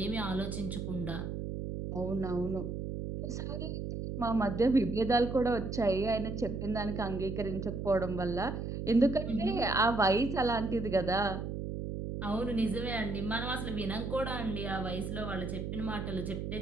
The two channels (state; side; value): noise; right; hum, 4 dB below the sound